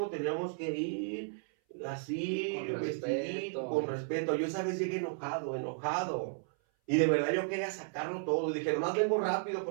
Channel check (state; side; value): silent; left; 55 dB below the other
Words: teníamos que ir así, vestido, con respeto. Yo esa vez llegué enojado. Y de verdad yo quería sacarlo todo. Dije, nomás vengo rápido